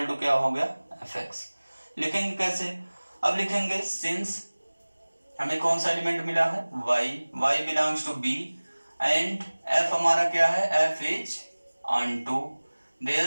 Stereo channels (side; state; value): both; inverted; correlation -1.00